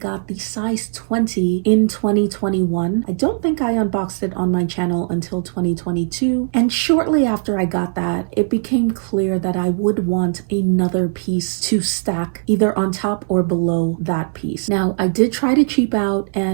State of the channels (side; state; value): left; silent; 60 dB below the other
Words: the size 20 in 2021. I don't think I unboxed it on my channel until 2022. And shortly after I got that, it became clear that I would want another piece to stack either on top or below that piece. Now, I did try to cheap out